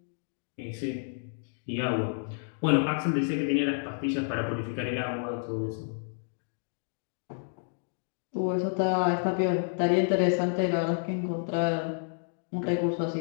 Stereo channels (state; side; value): silent; right; digital silence